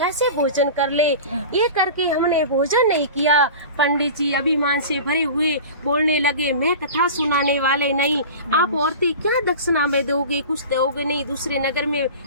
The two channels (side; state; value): both; inverted; correlation -0.34